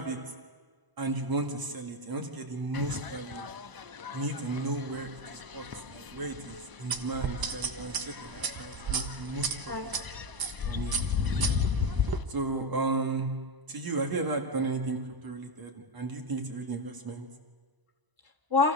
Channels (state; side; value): late; left; 1.0 ms